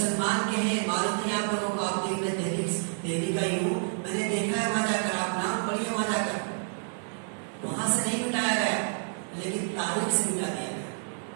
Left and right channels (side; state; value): left; silent; 55 dB below the other